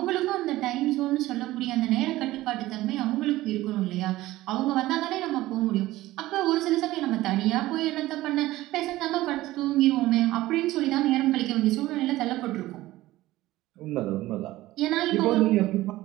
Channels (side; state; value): left; quieter; 16.9 dB